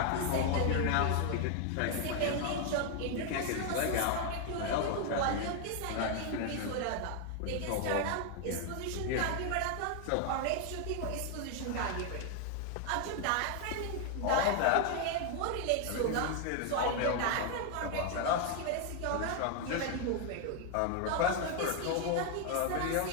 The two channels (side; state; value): both; different; correlation 0.00